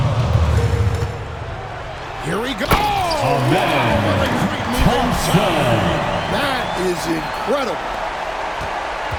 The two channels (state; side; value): identical; both; correlation 1.00